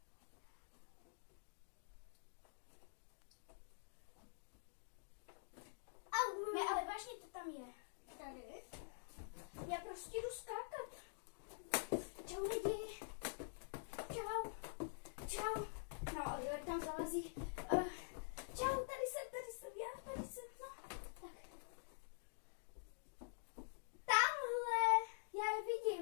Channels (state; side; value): silent; right; digital silence